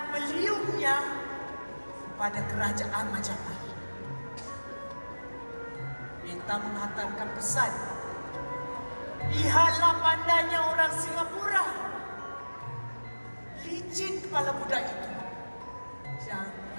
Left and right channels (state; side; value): inverted; both; correlation -1.00